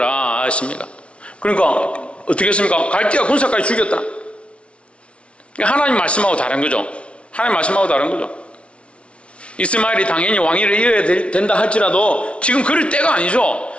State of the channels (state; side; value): late; right; 0.060 ms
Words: 하십니다. 그러니까 어떻게 했습니까? 갈대아 군사까지 죽였다. 하나님 말씀하고 다른 거죠. 하나님 말씀하고 다른 거죠. 이스마엘이 당연히 왕위를 이어야 된다 할지라도 지금 그럴 때가 아니죠.